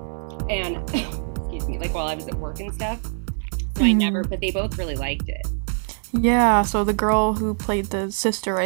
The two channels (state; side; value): silent; left; digital silence